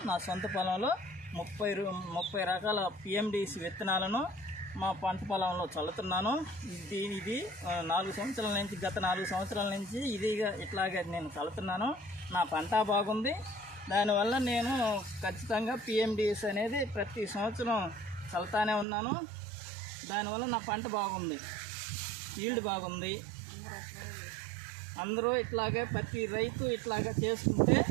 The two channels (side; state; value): left; drops out; at 18.9 s